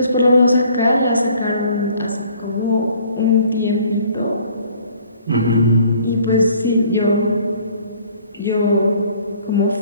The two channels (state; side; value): inverted; both; correlation -0.56